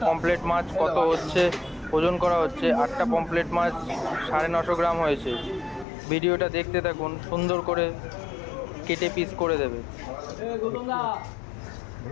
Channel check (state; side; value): drops out; right; at 5.9 s